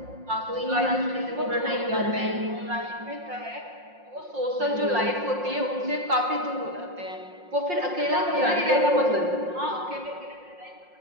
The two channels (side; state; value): left; late; 5.6 ms